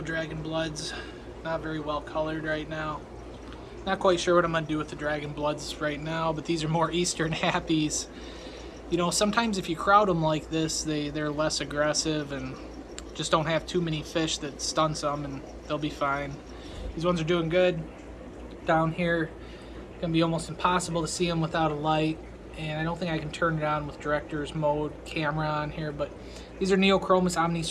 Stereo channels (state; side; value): identical; both; correlation 1.00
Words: dragon bloods, not very well colored right now. Not quite sure what I'm going to do with the dragon bloods right now, but these are more eastern happies. You know, sometimes if you crowd them like this, they're less aggressive and just don't have too many fish that stun some, and they'll be fine. These ones are doing good. Down here, it's going to be almost impossible to see them without a light, and I don't think I can turn it on with director's mode camera on here, but these are Neochromis